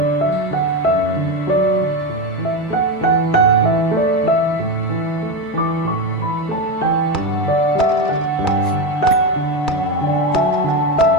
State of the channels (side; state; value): both; normal; correlation 0.15